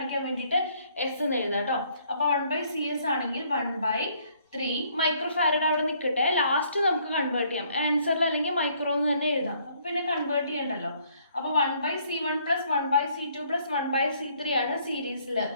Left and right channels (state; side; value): inverted; both; correlation -0.64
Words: വേണ്ടിയിട്ട് S എന്ന് എഴുതാം കേട്ടോ. അപ്പോൾ 1/CS ആണെങ്കിൽ 1/3 microfarad അവിടെ നിൽക്കട്ടെ. ലാസ്റ്റ് നമുക്ക് കൺവേർട്ട് ചെയ്യാം. ആൻസറിൽ അല്ലെങ്കിൽ മൈക്രോ എന്ന് തന്നെ എഴുതാം. അപ്പോൾ പിന്നെ കൺവേർട്ട് ചെയ്യണ്ടല്ലോ. അപ്പോൾ 1/C1 plus 1/C2 plus 1/C3 ആണ് സീരീസിൽ.